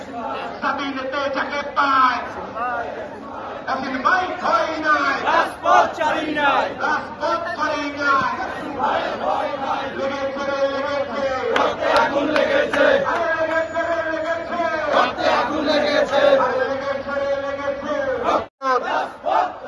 স্বাধীনতে যাকে পায় এসিন ভাই ভয় নাই রাজপথ ছাড়ি নাই রক্তে আগুন লেগেছে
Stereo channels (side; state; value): both; identical; correlation 1.00